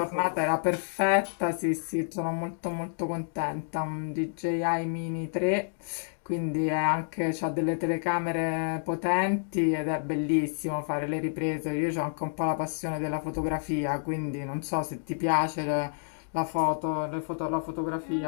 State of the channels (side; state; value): right; silent; digital silence